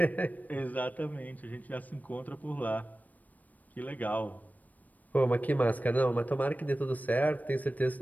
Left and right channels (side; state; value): right; late; 0.078 ms